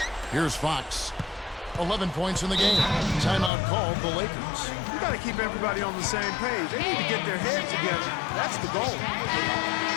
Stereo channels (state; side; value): drops out; right; at 3.5 s